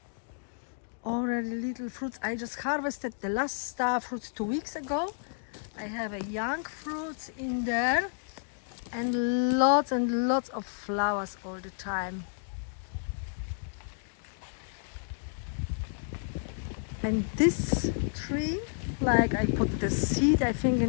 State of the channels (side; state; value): right; silent; digital silence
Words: Already little fruits. I just harvested the last star fruits 2 weeks ago. I have a young fruits in there and lots of flowers all the time. And this tree, like I put the seed, I think